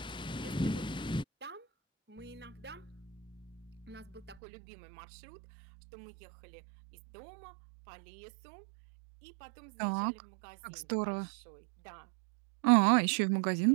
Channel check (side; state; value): left; drops out; at 4.4 s